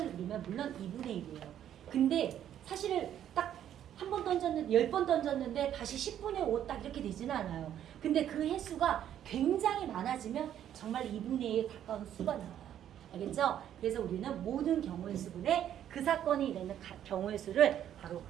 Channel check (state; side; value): quieter; left; 10.5 dB